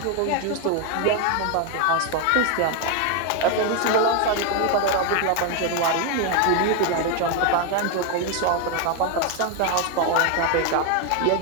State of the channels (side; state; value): both; different; correlation 0.01